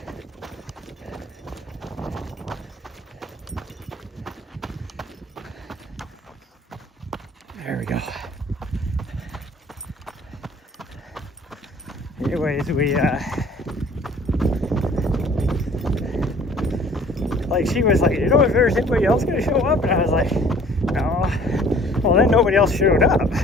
There we go. Anyways, we like, she was like, you know, if there's anybody else gonna show up, and I was like, no. Well, then nobody else showed up,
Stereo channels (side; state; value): both; normal; correlation 0.52